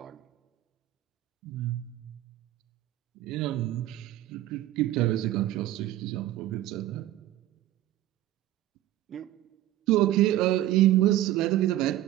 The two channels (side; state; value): left; quieter; 14.1 dB